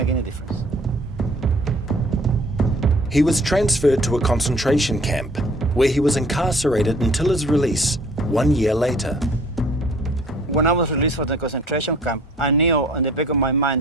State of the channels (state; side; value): normal; both; correlation 0.54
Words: any difference. He was transferred to a concentration camp where he was incarcerated until his release 1 year later. When I was released from the concentration camp, I knew in the back of my